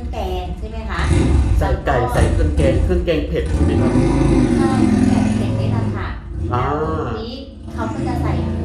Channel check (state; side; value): identical; both; correlation 1.00